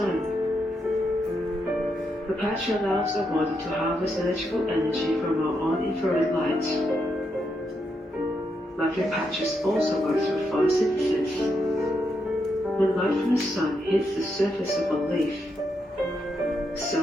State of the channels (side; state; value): both; normal; correlation 0.81